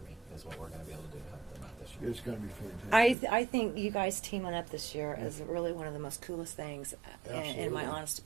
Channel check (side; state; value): left; drops out; at 3.2 s